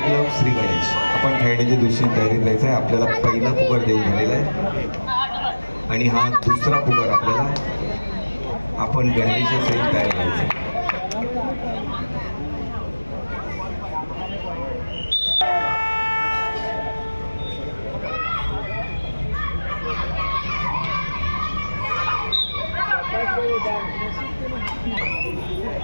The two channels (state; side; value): inverted; both; correlation -1.00